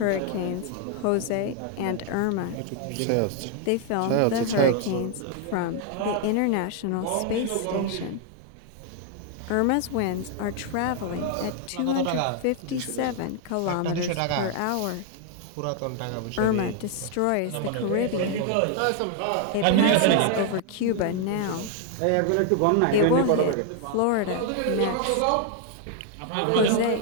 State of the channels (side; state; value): both; different; correlation 0.00